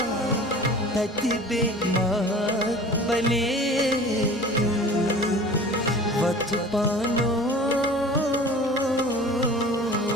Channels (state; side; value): normal; both; correlation 0.41